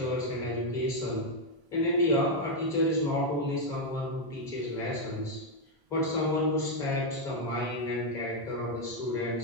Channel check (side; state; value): left; late; 1.0 ms